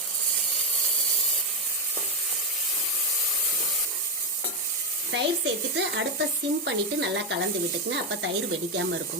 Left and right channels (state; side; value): normal; both; correlation 0.08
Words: தயிர் சேர்த்துட்டு அடுப்பை சிம் பண்ணிவிட்டு நல்லா கலந்து விட்டுக்குங்க. அப்போ தயிர் வெடிக்காமல்